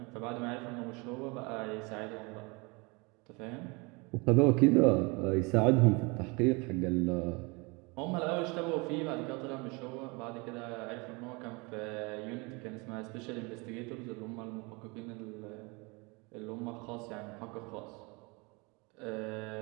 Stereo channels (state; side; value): quieter; left; 28.1 dB